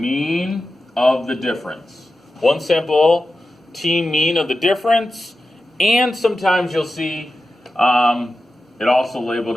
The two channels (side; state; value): both; normal; correlation 0.92